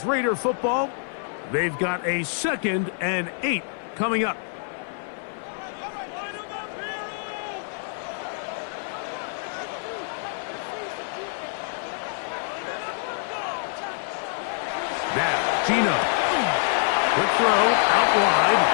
Raider football. They've got a 2nd and 8 coming up. Now, Gino. Quick throw, out wide.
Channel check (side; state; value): right; silent; 56 dB below the other